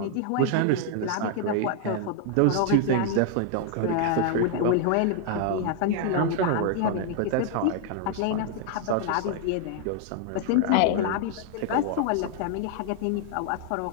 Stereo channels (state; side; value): different; both; correlation 0.00